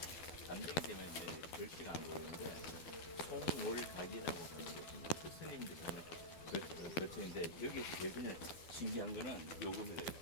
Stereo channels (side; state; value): right; late; 12 ms